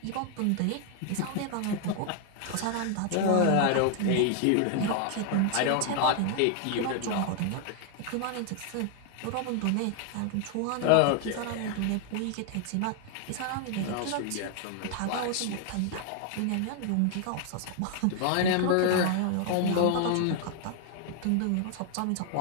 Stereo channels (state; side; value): different; both; correlation 0.00